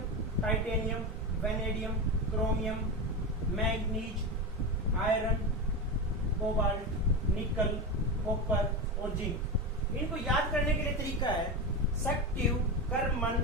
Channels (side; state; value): both; normal; correlation 0.19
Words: titanium, vanadium, chromium, manganese, iron, cobalt, निकल, कॉपर और जिंक। इनको याद करने के लिए तरीका है सक्टिव, कर्मन,